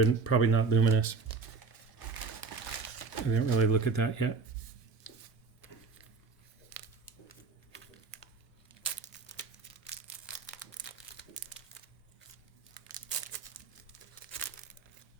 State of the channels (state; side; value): quieter; left; 4.7 dB